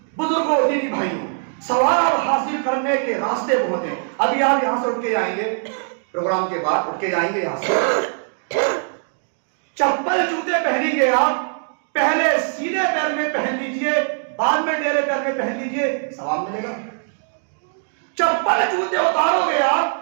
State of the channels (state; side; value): silent; left; digital silence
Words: بزرگوں، دینی بھائیوں، ثواب حاصل کرنے کے راستے بہت ہیں۔ ابھی آپ یہاں سے اٹھ کے جائیں گے، پروگرام کے بعد اٹھ کے جائیں گے یہاں سے، چپل جوتے پہنیں گے آپ، پہلے سیدھے پیر میں پہن لیجئے، بعد میں ڈیرے پیر میں پہن لیجئے، ثواب ملے گا۔ چپل جوتے اتارو گے